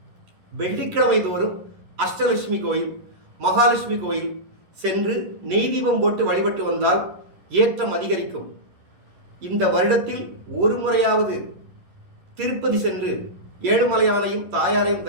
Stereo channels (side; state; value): left; late; 11 ms